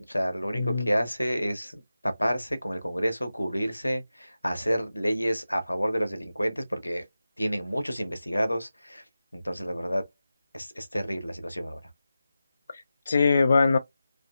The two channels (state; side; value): inverted; both; correlation -0.93